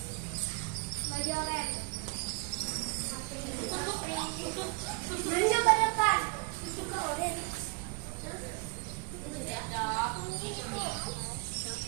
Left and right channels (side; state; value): left; quieter; 31.0 dB